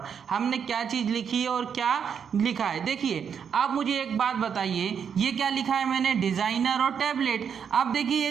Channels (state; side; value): quieter; left; 7.3 dB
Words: हमने क्या चीज लिखी है और क्या लिखा है। देखिए आप मुझे एक बात बताइए, ये क्या लिखा है मैंने, डिजाइनर और टैबलेट। अब देखिए